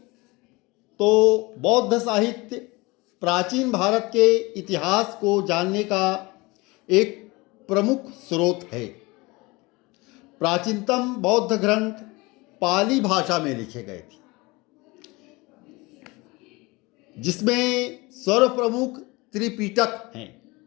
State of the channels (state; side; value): quieter; right; 23.8 dB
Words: तो बौद्ध साहित्य प्राचीन भारत के इतिहास को जानने का एक प्रमुख स्रोत है। प्राचीनतम बौद्ध ग्रंथ पाली भाषा में लिखे गए थे, जिसमें सर्वप्रमुख त्रिपिटक हैं।